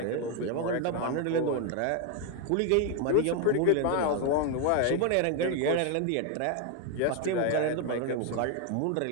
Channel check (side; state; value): both; different; correlation 0.01